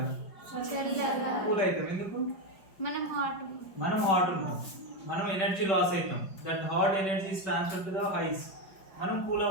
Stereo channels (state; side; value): late; right; 5.3 ms